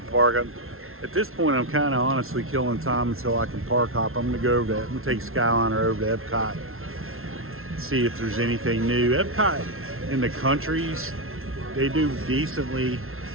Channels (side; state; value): left; late; 0.62 ms